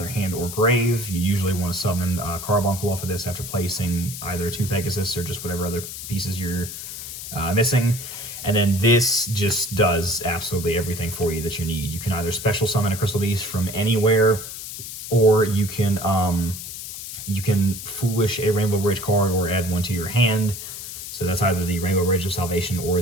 hand or grave. You usually want to summon Carbuncle off of this after placing either 2 Pegasus or just whatever other pieces you're missing. And then this just does absolutely everything for you that you need. You can either special summon a Crystal Beast from anywhere, or you can Foolish a Rainbow Bridge card or add 1 to your hand. So that's either the Rainbow Bridge of Salvation or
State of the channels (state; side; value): noise; left; hiss, 9 dB below the sound